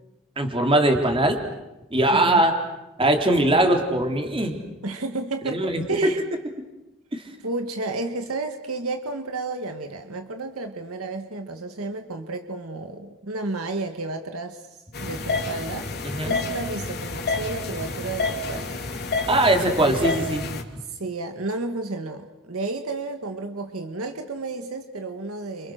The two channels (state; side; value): normal; both; correlation 0.30